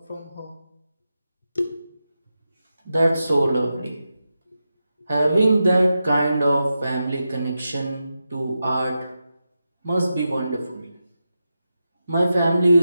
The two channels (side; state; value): both; inverted; correlation -0.89